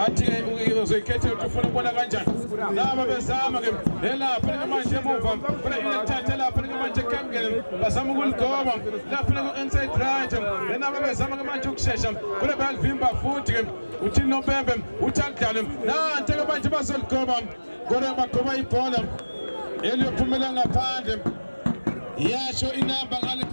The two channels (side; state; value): both; inverted; correlation -1.00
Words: uzoyikhethe ukuthi ufuna ukubona kanjani laba bezama-ke lapha-ke manje emuva funa ilithathe lapha-ke manje ekamkeni bazama ukuligoba lapha-ke ku-inside right naba bezama-ke manje ukushesha kule bayalivimba futhi-ke uthini nompembe uthi akudlale nante-ke manje bazoligoba kodwa bagoba ibhola eliyophumela ngaphandle yasho inamba ngale